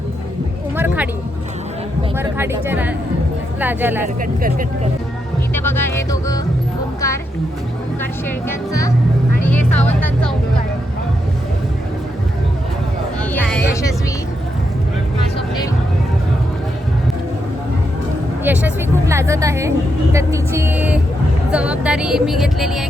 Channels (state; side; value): normal; both; correlation 0.82